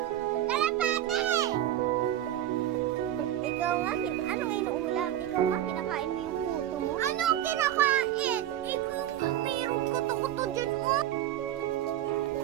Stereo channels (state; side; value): quieter; left; 12.2 dB